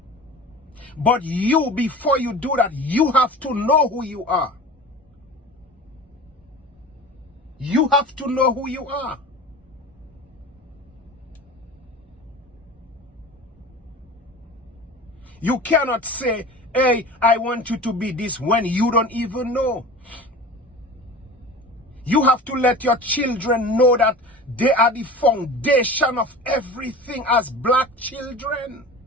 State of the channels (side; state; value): both; normal; correlation 0.36